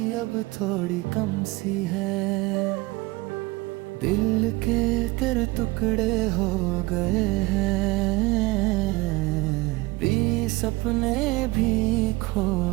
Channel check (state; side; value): quieter; left; 21.8 dB